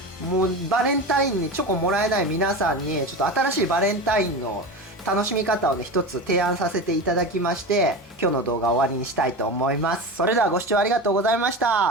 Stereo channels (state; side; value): normal; both; correlation 0.26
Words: もうバレンタインにチョコもらえない皆さんにちょっと新しいバレンタインの楽しみ方をね一つ提案させていただきまして、今日の動画を終わりにしたいと思います。それではご視聴ありがとうございまし